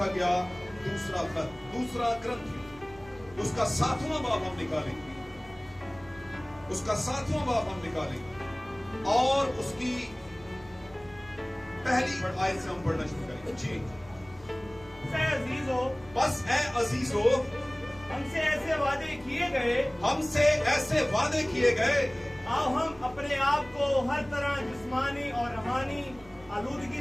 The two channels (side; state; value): right; noise; hum, 22 dB below the sound